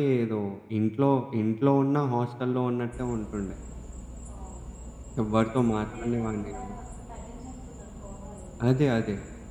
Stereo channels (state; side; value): identical; both; correlation 1.00